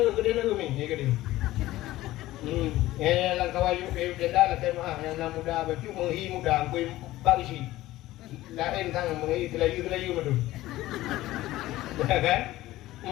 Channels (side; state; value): right; quieter; 16.3 dB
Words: umi, ya kedena. Ya, langkah wayu miuk tenda lah tema yang muda baju menghi muda kui bagisi. lain tang mengi telayu madu. Ya kan?